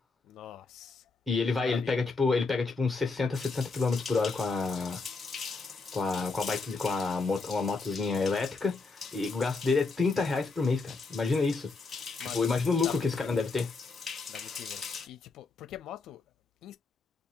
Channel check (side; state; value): right; quieter; 4.0 dB